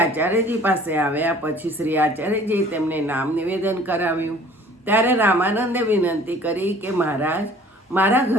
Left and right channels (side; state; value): both; normal; correlation 0.51